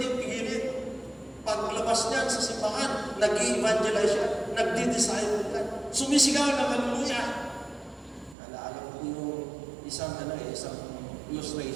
pigilin. Paglabas niyan sa simbahan, nag-i-evangelize siya, nagdi-disciple yan. Sumisigaw ng hallelujah. Naalala ko yung isang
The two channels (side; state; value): left; drops out; at 8.3 s